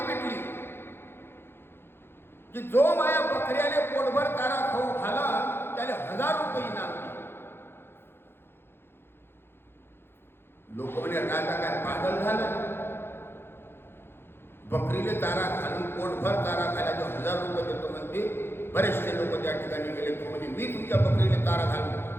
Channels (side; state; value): right; late; 0.11 ms